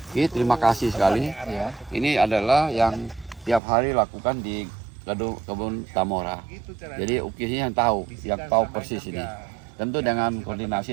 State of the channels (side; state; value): left; drops out; at 3.6 s